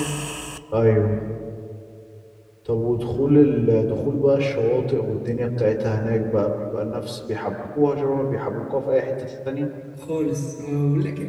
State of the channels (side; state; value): both; identical; correlation 1.00